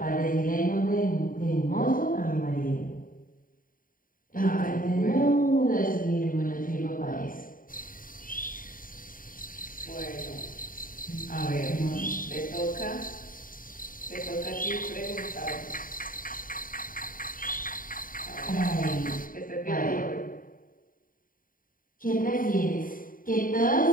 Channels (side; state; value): right; late; 0.40 ms